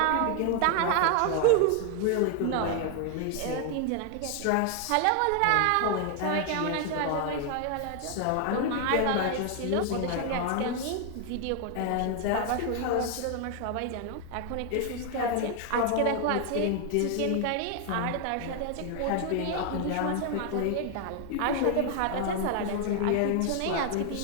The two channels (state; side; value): different; both; correlation 0.00